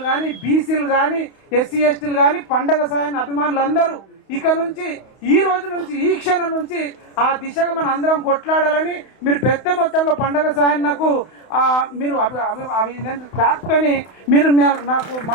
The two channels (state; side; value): late; right; 31 ms